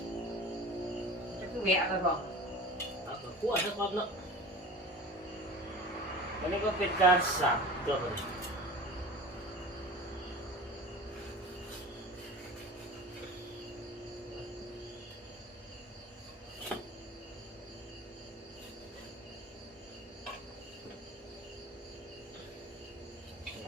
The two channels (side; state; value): both; normal; correlation 0.37